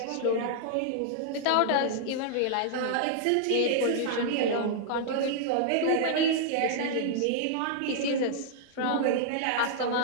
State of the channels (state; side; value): different; both; correlation -0.01